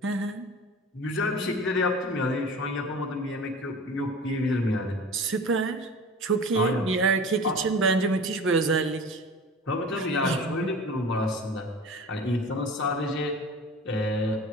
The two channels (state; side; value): normal; both; correlation 0.38